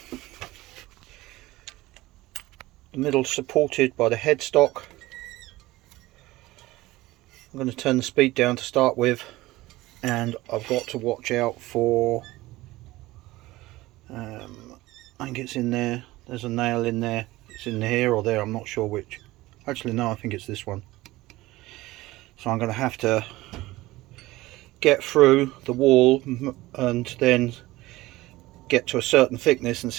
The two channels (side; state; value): left; quieter; 18.5 dB